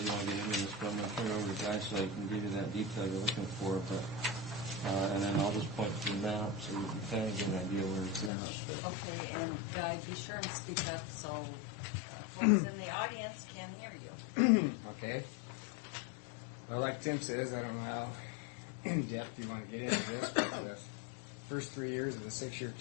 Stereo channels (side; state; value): right; drops out; at 8.3 s